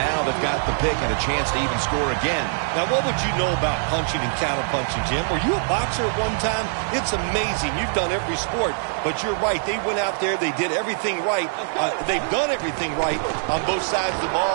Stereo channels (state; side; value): silent; left; digital silence